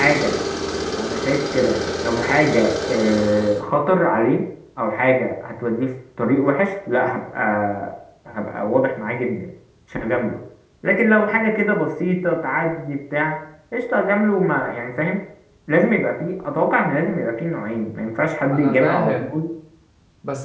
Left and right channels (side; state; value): both; identical; correlation 1.00